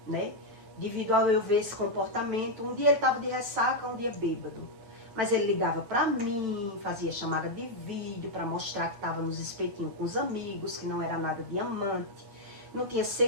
né? Devido ao eu ver esse comportamento. Um dia ele estava de ressaca, um dia bêbado. Mas ele ligava pra mim, fazia chamada de vídeo pra mostrar que estava nos espetinhos com os amigos, que não era nada diamante, não tinha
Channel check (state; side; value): late; left; 9.0 ms